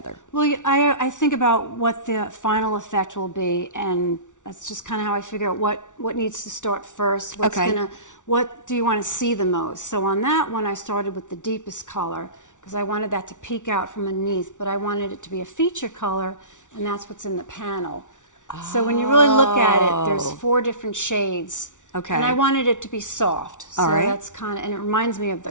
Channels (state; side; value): late; right; 0.86 ms